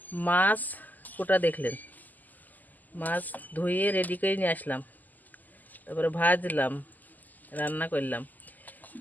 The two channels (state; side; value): late; right; 0.083 ms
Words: মাছ কোটা দেখলেন, মাছ ধুয়ে রেডি করে নিয়ে আসলাম, তারপরে ভাজলাম, রান্না করলাম,